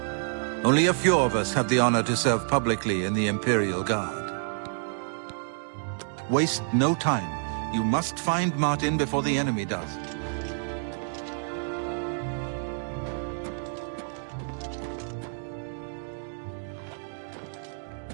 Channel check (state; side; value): silent; left; 59 dB below the other